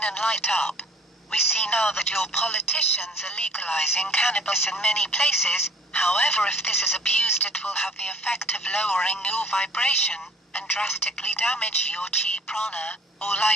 and light up. We see now that your politicians are legalizing cannabis in many places. However, if this is abused, it will have the effect of lowering your vibration and drastically damage your chi prana, or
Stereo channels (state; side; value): normal; both; correlation 0.52